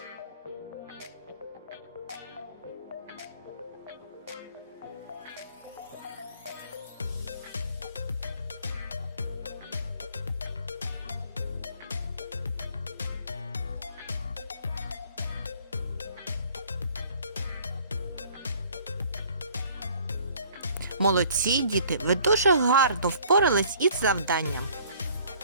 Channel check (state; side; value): inverted; both; correlation -0.56